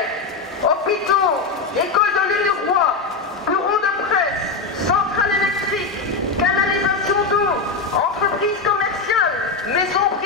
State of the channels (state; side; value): quieter; right; 4.3 dB